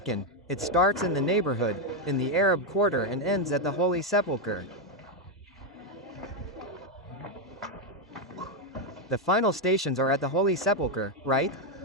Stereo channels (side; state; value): both; normal; correlation 0.04